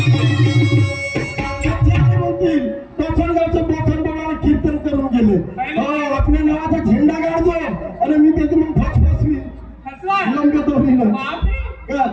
कीर्तन करून गेले. आपल्या नावाचा झेंडा काढतो आणि मी त्याची मग फसफसवी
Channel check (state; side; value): identical; both; correlation 1.00